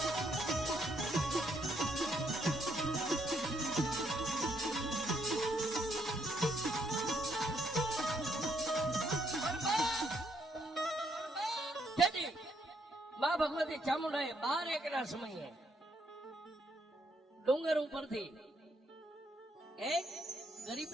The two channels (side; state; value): both; normal; correlation 0.73